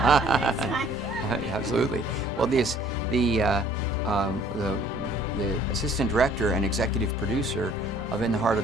Absolutely. Well, the assistant director and executive producer of In the Heart of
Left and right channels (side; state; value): both; normal; correlation 0.56